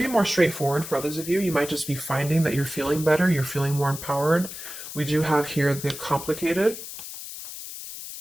more straightforward for others of you. You might just be finding that you're feeling better, you're feeling more empowered. We do have here the complicated.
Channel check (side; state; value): left; noise; hiss, 10 dB below the sound